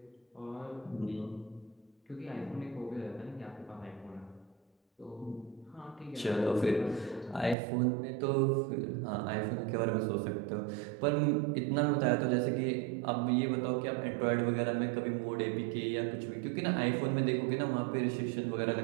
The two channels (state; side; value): drops out; left; at 7.6 s